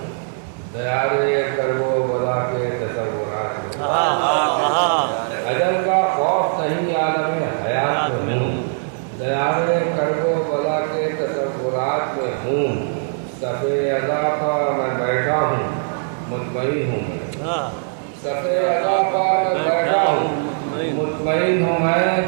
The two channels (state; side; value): silent; left; digital silence